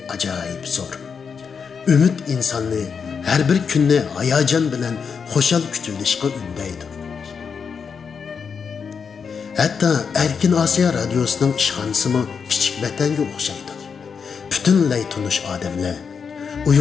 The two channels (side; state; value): right; quieter; 6.1 dB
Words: ajoyib zo'r. Ümid insonni har bir kunni hayajon bilan xo'shal kutilishga undaydi. Hatto Erkin Asiya radiosining ishxonasimi kichik vatanga o'xshaydi. Butunlay tunish odamlar,